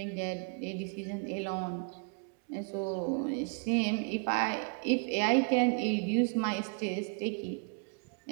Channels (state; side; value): quieter; left; 35.7 dB